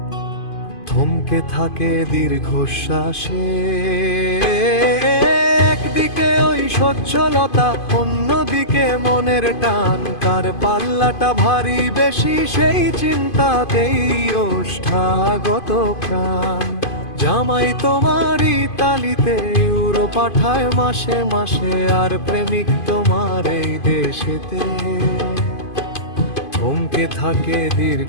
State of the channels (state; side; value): late; right; 2.5 ms